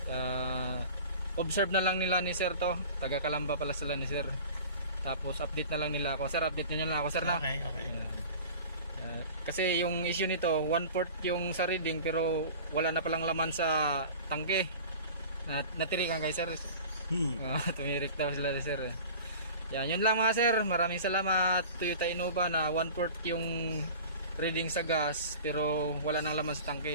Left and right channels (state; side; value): inverted; both; correlation -0.39